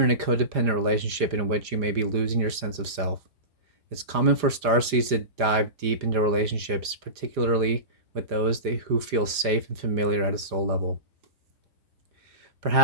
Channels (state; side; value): late; left; 5.0 ms